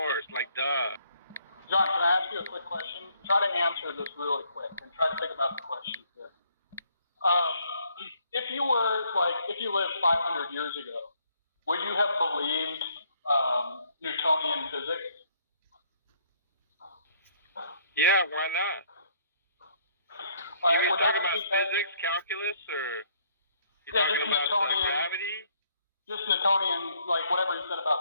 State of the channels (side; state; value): both; inverted; correlation -0.65